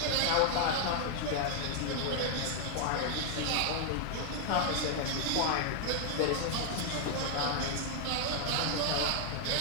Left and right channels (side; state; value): both; different; correlation 0.00